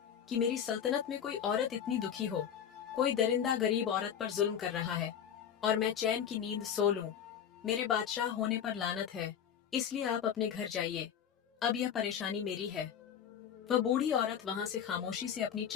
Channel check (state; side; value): quieter; right; 8.6 dB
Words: कि मेरी सल्तनत में कोई औरत इतनी दुखी हो। कोई दरिंदा गरीब औरत पर जुल्म कर रहा है और मैं चैन की नींद सो लूं। मेरे बादशाह होने पर लानत है, इसलिए आप अपने घर जाइए। अब यह परेशानी मेरी है। वह बूढ़ी औरत वहां से खामोशी से अपनी